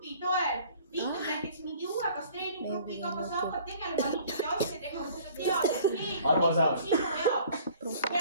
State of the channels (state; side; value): inverted; both; correlation -0.52